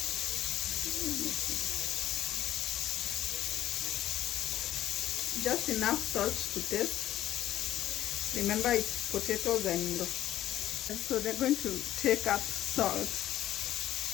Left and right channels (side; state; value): right; quieter; 13.1 dB